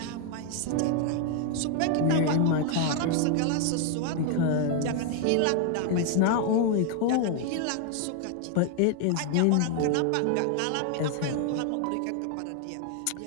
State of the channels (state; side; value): different; both; correlation 0.00